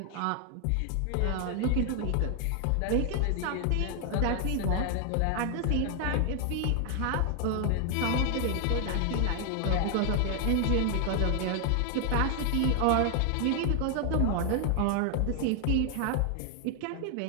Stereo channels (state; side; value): different; both; correlation 0.00